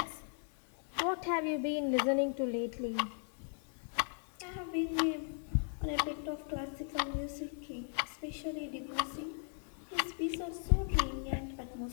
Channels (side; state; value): right; silent; 53 dB below the other